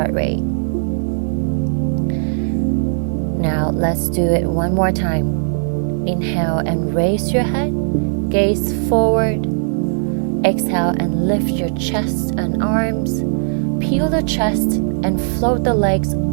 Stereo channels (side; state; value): left; silent; 67 dB below the other